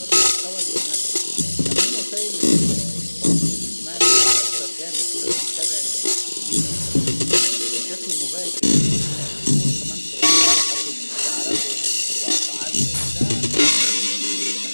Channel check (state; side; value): inverted; both; correlation -1.00